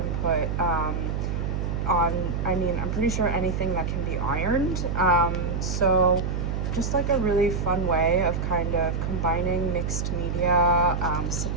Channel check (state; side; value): noise; right; hum, 1 dB below the sound